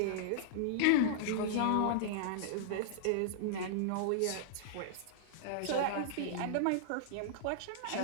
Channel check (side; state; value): both; different; correlation -0.02